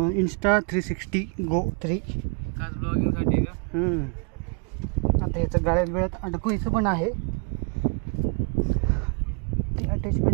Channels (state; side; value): quieter; left; 39.2 dB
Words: इंस्टा 360 गो 3 खास ब्लॉगिंग साठी का? आता याचं गाड्यात वेळात अडकवायचं पण आहे. ती